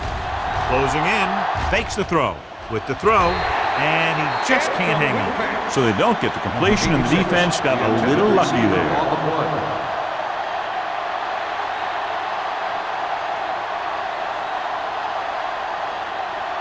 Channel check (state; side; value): identical; both; correlation 1.00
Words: Closing in, fakes the throw. with the throw, and he just can't hang on. So they don't get the completion, and the defense got a little lucky there.